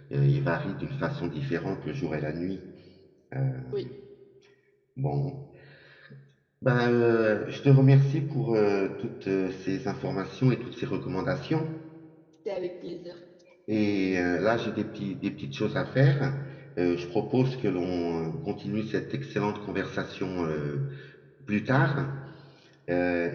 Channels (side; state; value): both; identical; correlation 1.00